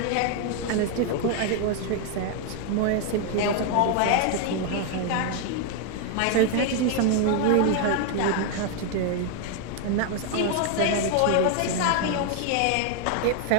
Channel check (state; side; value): different; both; correlation 0.00